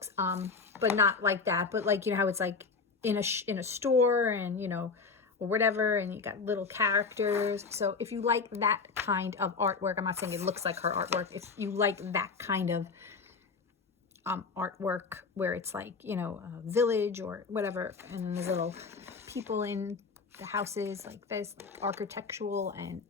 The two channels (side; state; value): right; quieter; 4.8 dB